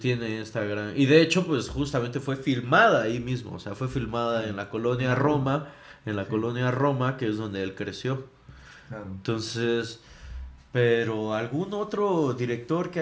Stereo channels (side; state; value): both; identical; correlation 1.00